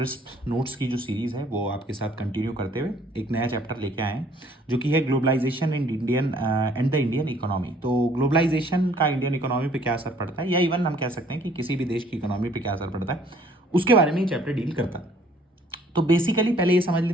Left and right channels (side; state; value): both; normal; correlation 0.59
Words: नोट्स की जो सीरीज़ है वो आपके साथ कंटिन्यू करते हुए एक नया चैप्टर लेके आए हैं जो कि है globalisation and the Indian economy. तो ग्लोबलाइजेशन का इंडियन इकोनॉमी पे क्या असर पड़ता है या इवन हम कह सकते हैं कि किसी भी देश की इकोनॉमी पे क्या असर पड़ता है उसके बारे में ये चैप्टर डील करता है। तो बेसिकली पहले ये समझ